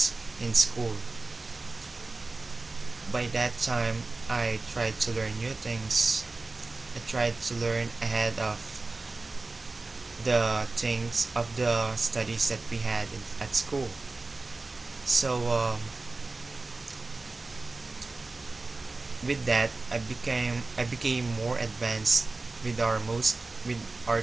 in school. By that time, I tried to learn new things. I tried to learn ahead of the things of the studies that we had at school. So with that, I became more advanced with our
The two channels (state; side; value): quieter; left; 3.5 dB